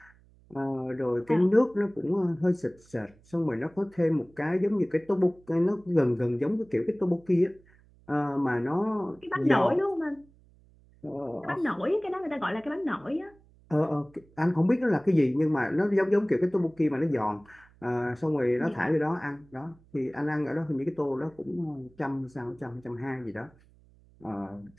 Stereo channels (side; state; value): right; noise; hum, 28 dB below the sound